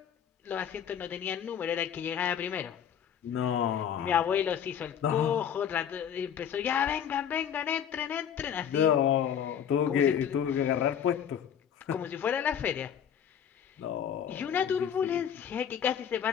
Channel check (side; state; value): right; quieter; 8.6 dB